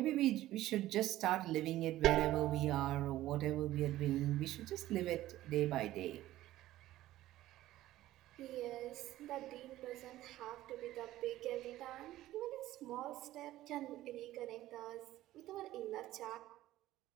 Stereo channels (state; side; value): quieter; left; 15.0 dB